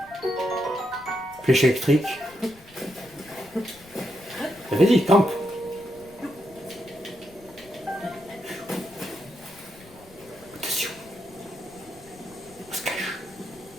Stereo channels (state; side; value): noise; left; rumble, 24 dB below the sound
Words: Flèche électrique. Bah, vas-y, campe. Attention. On se cache.